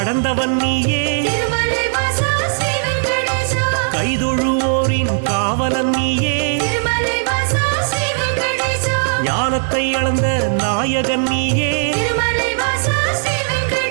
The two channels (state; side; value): silent; left; 64 dB below the other